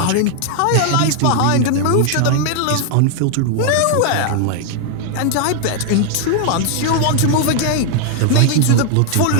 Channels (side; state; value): both; different; correlation 0.00